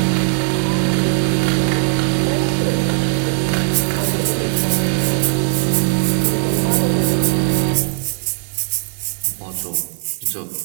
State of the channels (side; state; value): left; silent; 56 dB below the other